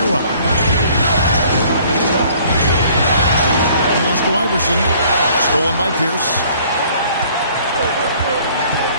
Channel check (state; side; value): inverted; both; correlation -0.57